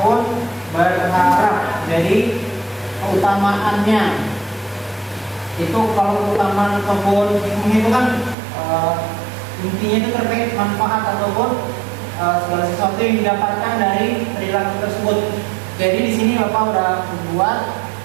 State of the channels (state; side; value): drops out; left; at 8.3 s